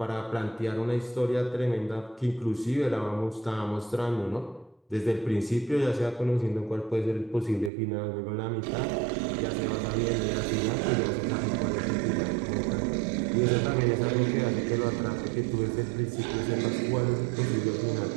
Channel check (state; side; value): drops out; left; at 7.7 s